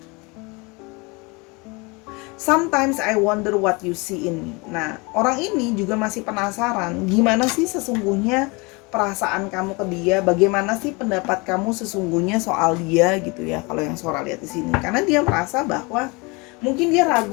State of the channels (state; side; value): quieter; right; 27.4 dB